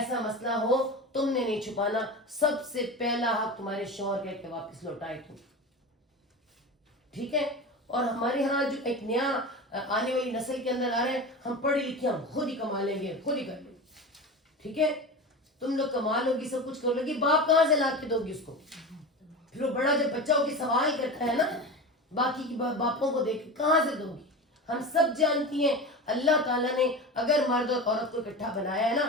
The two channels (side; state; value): both; normal; correlation 0.28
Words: مسئلہ ہو تم نے نہیں چھپانا, سب سے پہلا حق تمہارے شوہر کا کہ واپس لوٹائے تم. ٹھیک ہے. اور ہمارے ہاں جو ایک نیا آنے والی نسل کے اندر آ رہے ہیں, ہم پڑھے لکھے ہم خود ہی کما لیں گے, خود ہی کر لیں گے. ٹھیک ہے, تم لوگ کما لو گی, سب کچھ کر لو گی, باپ کہاں سے لا کے دو گی اس کو؟ پھر وہ بڑا جب بچہ ہو کے سوال کرتا ہے نا باقی کی باپوں کو دیکھ کہاں سے دو گی؟ ہم سب جانتی ہیں اللہ تعالیٰ نے اگر مرد اور عورت کو اکٹھا بنایا ہے